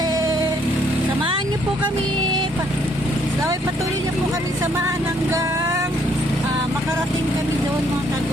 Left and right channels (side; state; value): right; noise; rumble, 23 dB below the sound